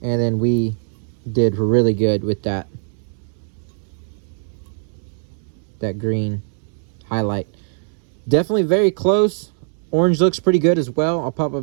And then we did really good with that green highlight. Definitely very close. Orange looks pretty good as well. I'll pop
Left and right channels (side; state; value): left; silent; 65 dB below the other